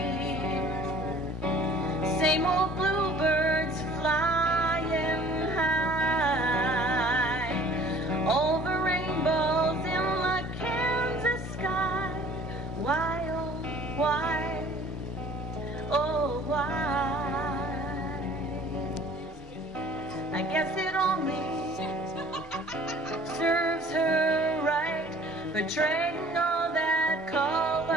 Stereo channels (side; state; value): both; normal; correlation 0.50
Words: Same old bluebirds flying high over rainbows in the Kansas sky. Why, oh, why, oh, why? I guess it only serves her right for trading all that